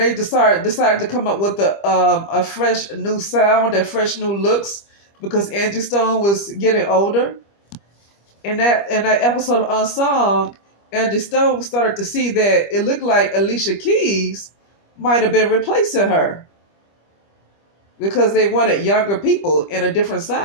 decided to come up with a fresh new sound and fresh new looks because Angie Stone was getting older. In that episode of Unsung, Angie Stone started to see that it looked like Alicia Keys might have been replacing her because they wanted younger people in a different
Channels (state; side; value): late; right; 25 ms